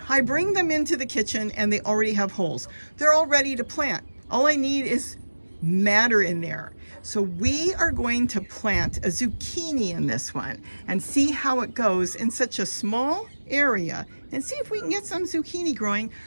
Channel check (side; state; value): both; inverted; correlation -1.00